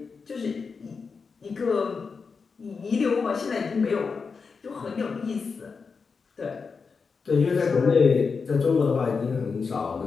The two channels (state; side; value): quieter; right; 5.1 dB